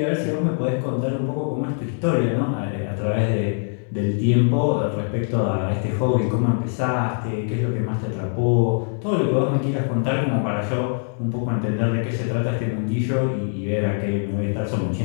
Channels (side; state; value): right; silent; 64 dB below the other